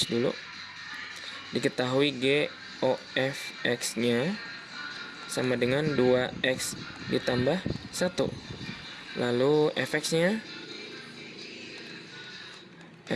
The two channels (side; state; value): both; identical; correlation 1.00